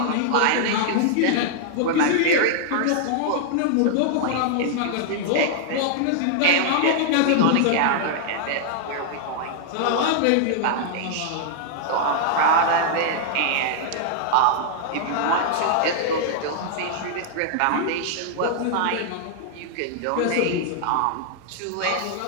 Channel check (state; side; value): different; both; correlation -0.01